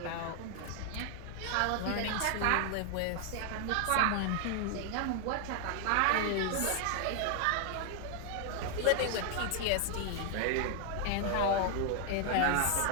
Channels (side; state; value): both; different; correlation 0.00